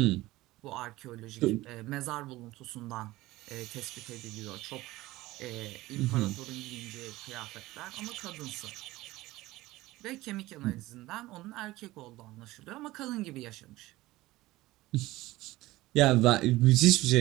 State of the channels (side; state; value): left; quieter; 18.3 dB